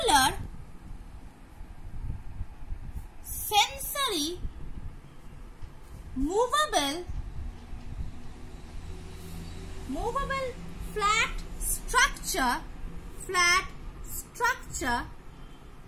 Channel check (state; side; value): identical; both; correlation 1.00